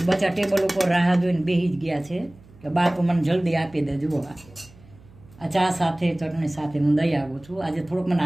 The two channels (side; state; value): right; noise; hum, 25 dB below the sound